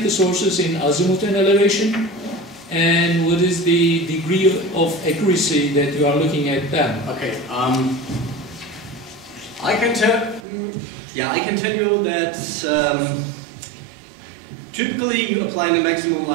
the sources in azimuth and elevation, and what is the degree of accuracy that you are looking at them? Okay, I can tell you that typically you apply the maximum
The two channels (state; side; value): drops out; left; at 10.4 s